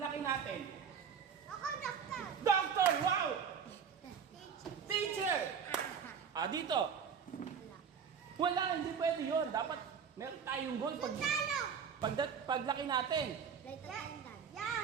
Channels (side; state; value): left; quieter; 6.9 dB